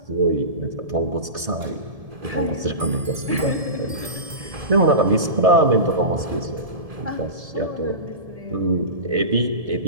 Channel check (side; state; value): left; late; 1.7 ms